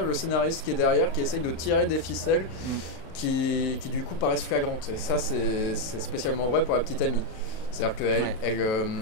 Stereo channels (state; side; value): late; right; 37 ms